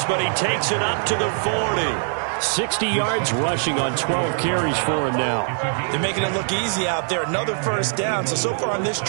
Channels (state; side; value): silent; left; 60 dB below the other